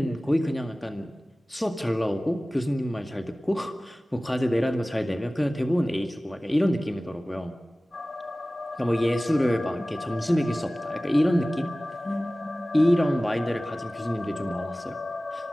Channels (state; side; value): normal; both; correlation 0.97